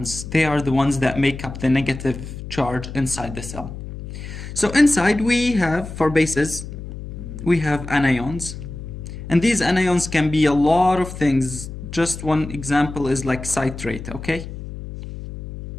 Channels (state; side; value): noise; left; hum, 10 dB below the sound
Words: They are the ones that make up the negative charge inside the cell. So inside we have, for bases, we have anions. And these anions can be a lot of things. Just one example is like citrate, okay?